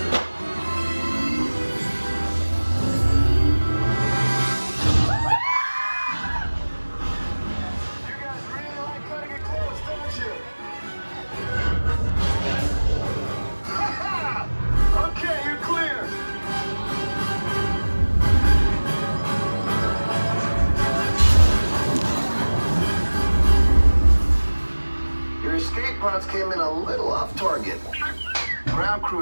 Pods came in a little off target. Ground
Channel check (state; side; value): inverted; both; correlation -1.00